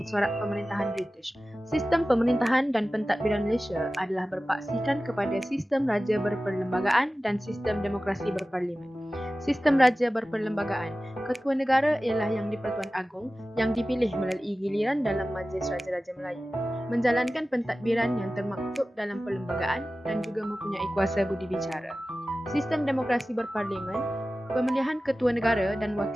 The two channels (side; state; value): both; normal; correlation 0.96